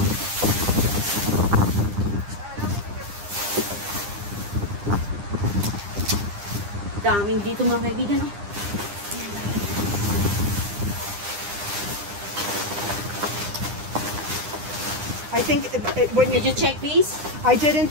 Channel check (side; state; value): left; late; 9.9 ms